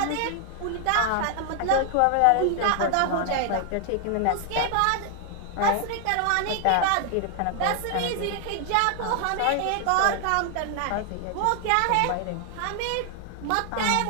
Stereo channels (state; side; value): different; both; correlation 0.00